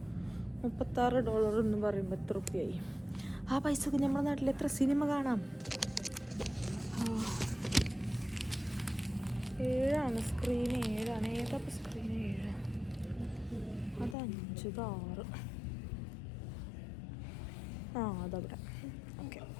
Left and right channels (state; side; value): drops out; right; at 14.2 s